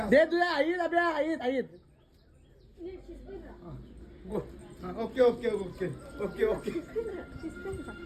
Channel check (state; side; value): identical; both; correlation 1.00